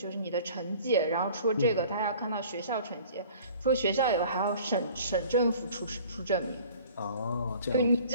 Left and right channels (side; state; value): both; inverted; correlation -0.49